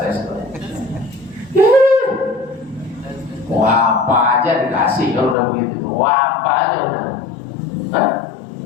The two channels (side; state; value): right; drops out; at 5.4 s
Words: tes doa. Wah, apa aja dikasih kalau udah begitu. Wah, apa aja udah.